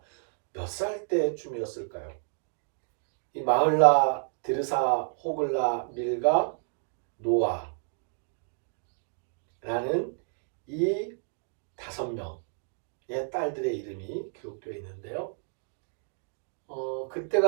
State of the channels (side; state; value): left; silent; 58 dB below the other